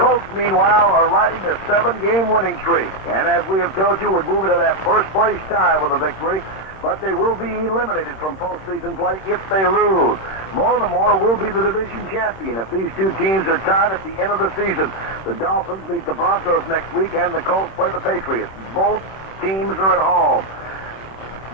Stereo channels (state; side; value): late; right; 26 ms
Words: meanwhile, are riding a 7-game winning streak, and as we have told you, would move into that first-place tie with a victory, but they will be eliminated from postseason play if they lose. Baltimore will be the division champion if these two teams are tied at the end of the season. The Dolphins meet the Broncos next week, and the Colts play the Patriots. Both teams are at home.